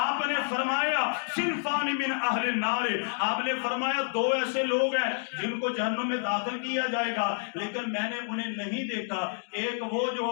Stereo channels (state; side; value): silent; right; digital silence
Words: نے فرمایا صنفان من اہل النار, آپ نے فرمایا دو ایسے لوگ ہیں جن کو جہنم میں داخل کیا جائے گا, لیکن میں نے انہیں نہیں دیکھا. ایک وہ جو